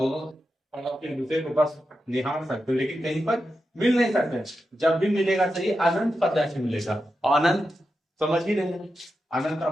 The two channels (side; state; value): both; normal; correlation 0.89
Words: एक दूसरे को बस निहार सकते, लेकिन कहीं पर मिल नहीं सकते। जब भी मिलेगा तो ये अनंत पर जाके मिलेगा। और अनंत समझ ही रहे हैं, अनंत